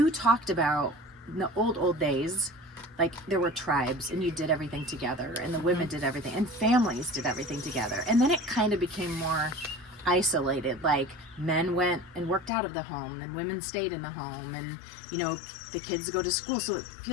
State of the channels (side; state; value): right; drops out; at 12.5 s